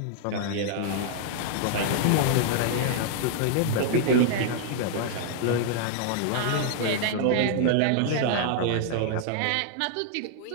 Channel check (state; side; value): different; both; correlation 0.00